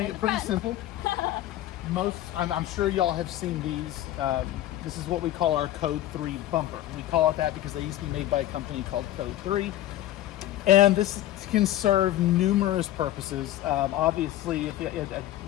it pretty simple. I'm sure y'all have seen these. This is what we call our Code 3 bumper. We call it that because they used to be made by a company called Code 3. And this can serve numerous purposes. Obviously,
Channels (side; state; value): right; quieter; 13.7 dB